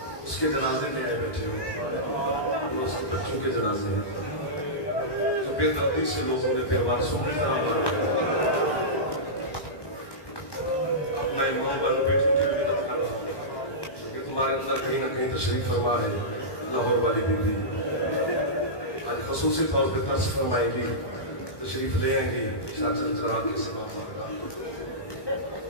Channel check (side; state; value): right; late; 1.2 ms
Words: اس کے جنازے میں آئے بیٹھے ہو، اس کے بچوں کے جنازے ہیں، تو بے دردی سے لوگوں نے بے وارثوں کی طرح مارا۔ اب میں ماں بہنوں بیٹھوں کی بھی مدد کر رہا ہوں کہ تمہارے اندر کہیں نہ کہیں تشریف فرما ہے لاہور والی بیوی، آج خصوصی طور پہ ترس فرمائیں گی، تشریف لے آئیں گی چاچل چرا کے سے باپ کا۔